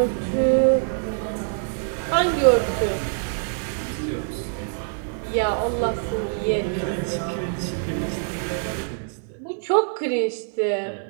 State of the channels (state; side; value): silent; left; 57 dB below the other